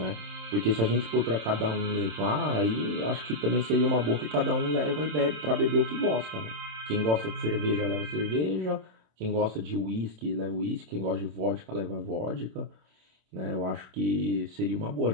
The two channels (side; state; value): left; late; 27 ms